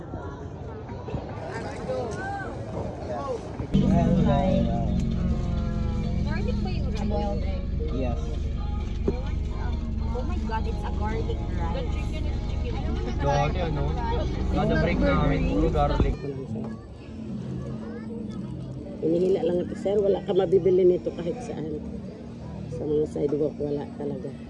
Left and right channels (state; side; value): identical; both; correlation 1.00